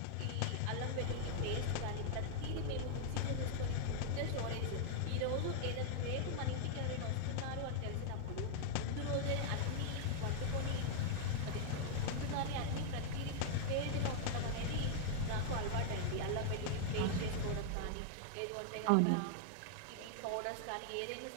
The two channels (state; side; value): different; both; correlation -0.01